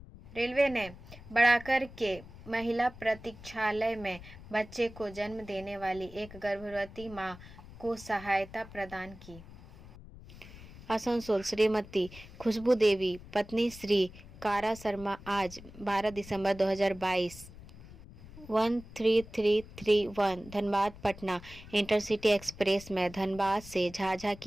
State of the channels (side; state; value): left; noise; rumble, 17 dB below the sound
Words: रेलवे ने बढ़ाकर के महिला प्रतीक्षालय में बच्चे को जन्म देने वाली एक गर्भवती मां को सहायता प्रदान की। आसनसोल श्रीमती खुशबू देवी पत्नी श्री कारा शर्मा आज 12 दिसंबर 2022 13331 धनबाद पटना इंटरसिटी एक्सप्रेस में धनबाद से झाझा